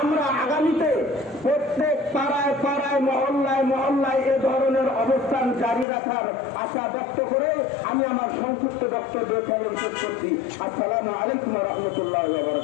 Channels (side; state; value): right; drops out; at 5.9 s